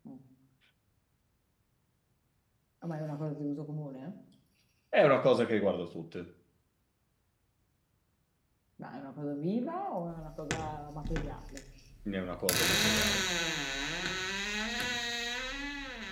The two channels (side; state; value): both; identical; correlation 1.00